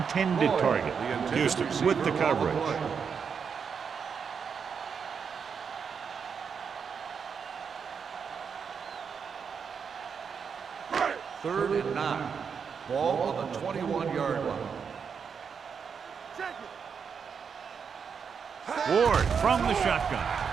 target. Houston with the coverage. Third and 9. Ball on the 21-yard line. Ward from the shotgun.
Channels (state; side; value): quieter; left; 6.4 dB